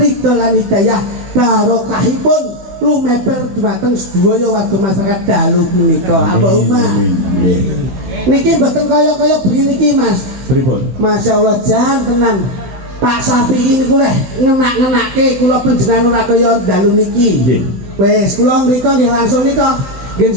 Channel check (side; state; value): left; late; 16 ms